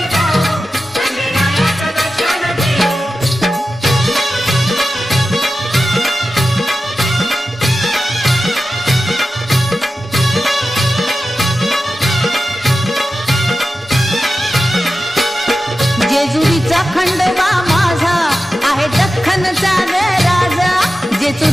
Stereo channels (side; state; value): both; normal; correlation 0.92